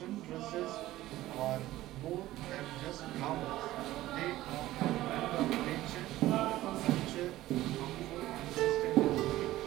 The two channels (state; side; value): quieter; left; 15.8 dB